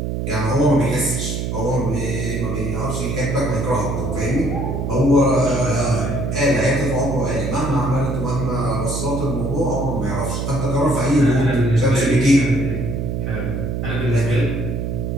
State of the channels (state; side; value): noise; right; hum, 2 dB below the sound